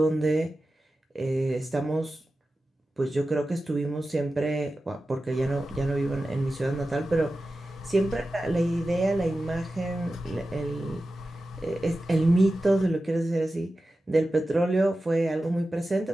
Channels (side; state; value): both; normal; correlation 0.94